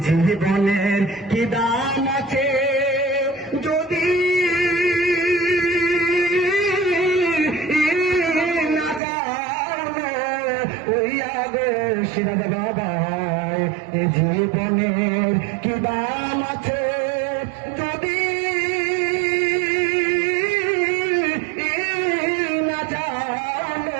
জীবনের কি দাম আছে যদি না জানো হইয়া গো সিরাজ বাবা এ জীবনের কি দাম আছে যদি না জানো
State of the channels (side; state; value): left; drops out; at 9.0 s